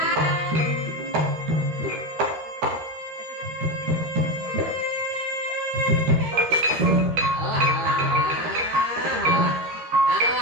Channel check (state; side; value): late; left; 13 ms